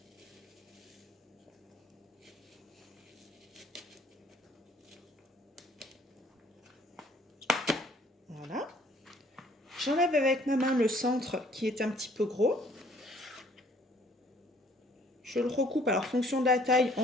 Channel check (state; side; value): normal; both; correlation 0.60